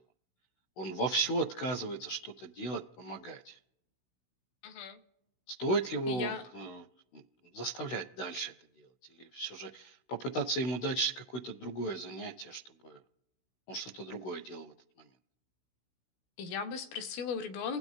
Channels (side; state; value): right; late; 16 ms